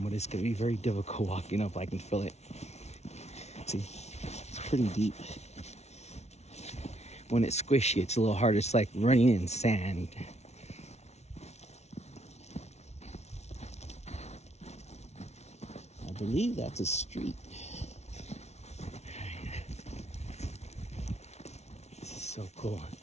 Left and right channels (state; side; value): late; right; 0.32 ms